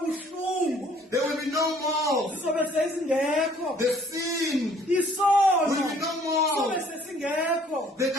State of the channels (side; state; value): both; normal; correlation 0.59